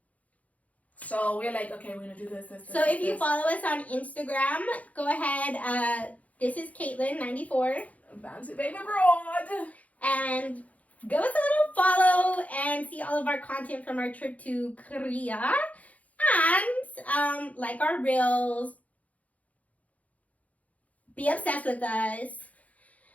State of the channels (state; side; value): late; right; 0.069 ms